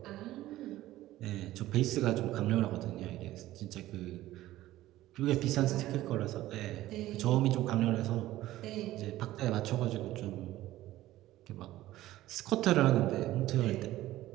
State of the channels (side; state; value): left; quieter; 15.5 dB